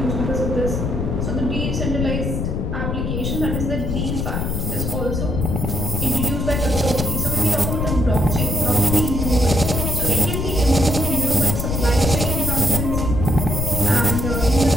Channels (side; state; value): left; noise; rumble, 1 dB below the sound